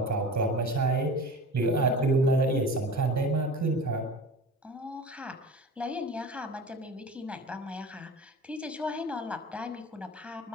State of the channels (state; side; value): normal; both; correlation 0.36